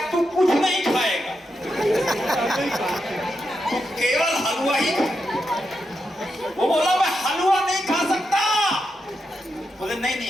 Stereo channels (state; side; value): normal; both; correlation 0.85